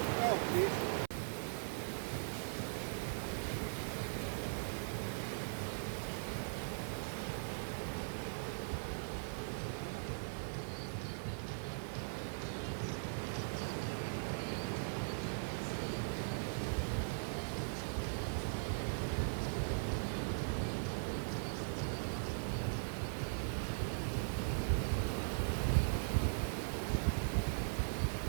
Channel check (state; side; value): silent; left; 51 dB below the other